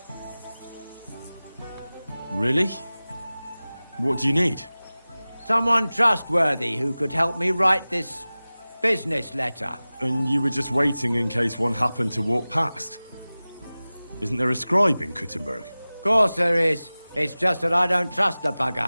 Really? What do you need? Someone trustworthy who could help me write this business letter. And you were just waiting in case one happened to walk past? Isn't there a scribe in Kuttenberg? Of course there is. It's just that I don't trust the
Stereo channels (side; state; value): both; inverted; correlation -0.98